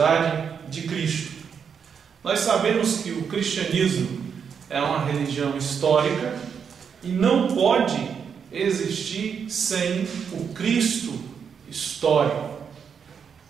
de Cristo. Nós sabemos que o cristianismo é uma religião histórica e não pode existir sem o Cristo histórico.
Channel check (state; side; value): quieter; left; 6.9 dB